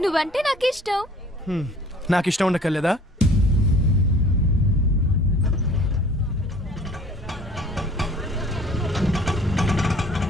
నువ్వంటే నాకు ఇష్టం. నాకు ఇష్టం ఉండకలేదా?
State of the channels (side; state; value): both; normal; correlation 0.51